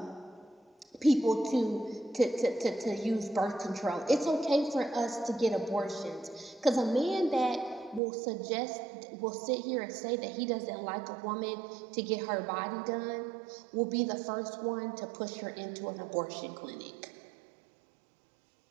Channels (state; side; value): drops out; left; at 8.0 s